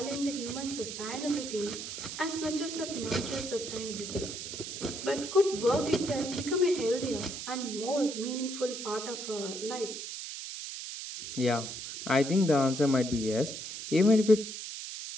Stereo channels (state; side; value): noise; right; hiss, 8 dB below the sound